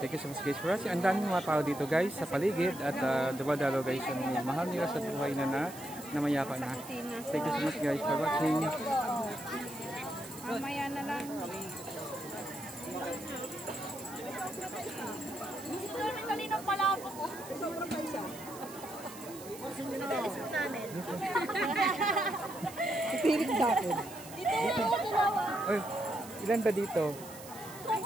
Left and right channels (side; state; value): right; noise; hiss, 15 dB below the sound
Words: Thank you so much guys for watching. Ang daming mga tao dito guys sa paligid. At dumadalaw guys ang mahal nila sa buhay na namayapa na. Thank you so much guys for watching. Mamaya na lang. Gusto namin kanina pala ako. Sobrang paisa. Pinalis mo namin. Pipilit sa akin. Dito ako dalawa. Oy, ilan ba dito?